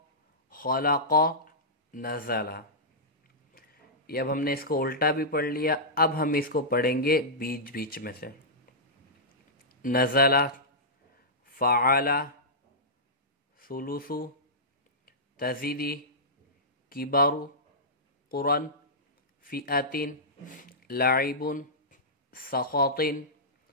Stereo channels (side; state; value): both; normal; correlation -0.14